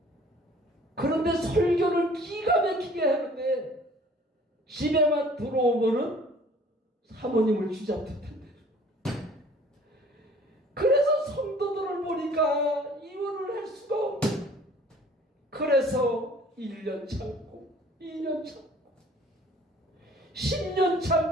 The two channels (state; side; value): normal; both; correlation 0.52